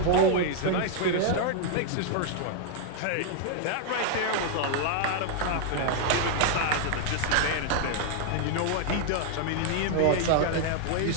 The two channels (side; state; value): both; different; correlation 0.00